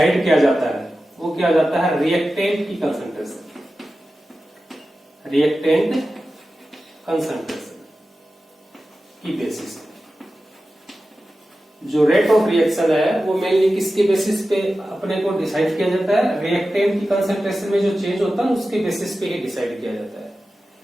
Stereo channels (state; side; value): normal; both; correlation 0.94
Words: किया जाता है वो क्या जाता है? रिएक्टेंट की कंसंट्रेशन, रिएक्टेंट कंसंट्रेशन की बेसिस पे। जो रेट ऑफ रिएक्शन है वो मेनली किसके बेसिस पे अपने को डिसाइड किया जाता है? रिएक्टेंट की कंसंट्रेशन में जो चेंज होता है उसके बेसिस पे ही डिसाइड किया जाता है।